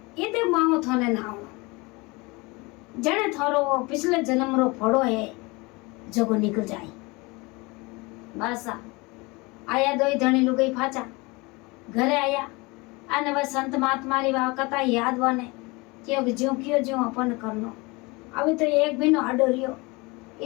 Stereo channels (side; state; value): right; quieter; 25.4 dB